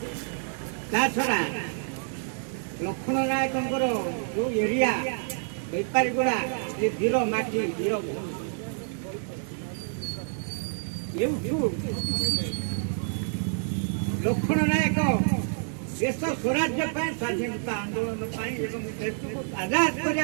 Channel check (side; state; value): left; silent; digital silence